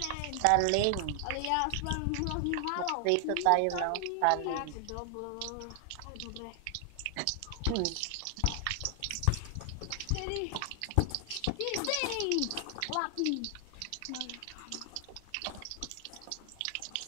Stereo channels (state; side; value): different; both; correlation 0.00